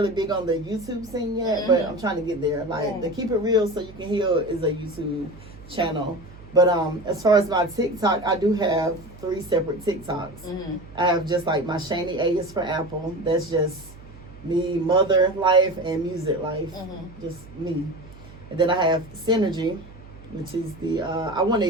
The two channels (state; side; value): noise; right; hum, 19 dB below the sound